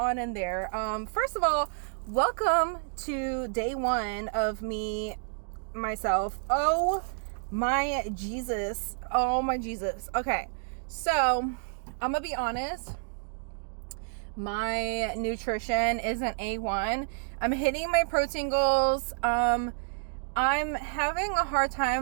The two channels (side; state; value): left; silent; digital silence